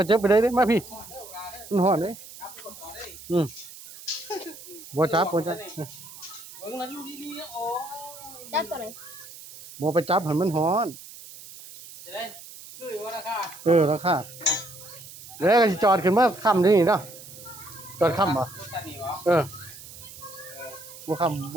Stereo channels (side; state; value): right; noise; hiss, 16 dB below the sound